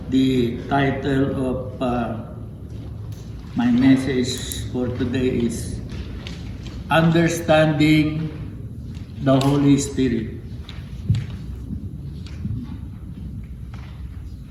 the title of my message for today is Understanding the Holy Spirit.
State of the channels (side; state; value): both; identical; correlation 1.00